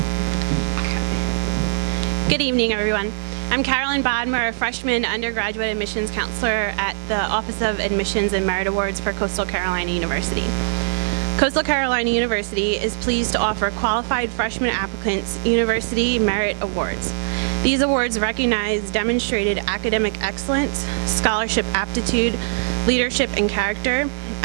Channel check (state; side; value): silent; left; 63 dB below the other